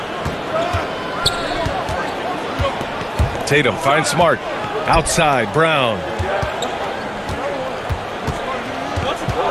Tatum finds Smart. Outside, Brown.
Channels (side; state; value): both; identical; correlation 1.00